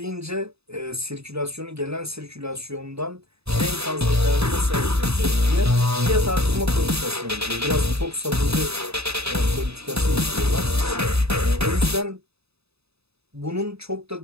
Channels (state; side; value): late; left; 0.79 ms